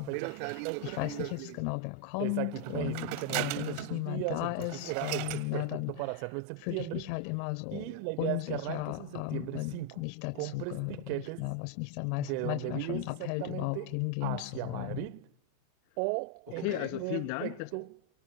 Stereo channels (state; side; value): different; both; correlation 0.00